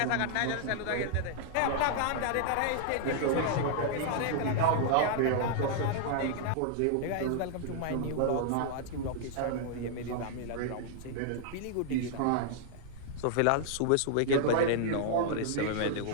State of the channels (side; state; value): both; different; correlation -0.01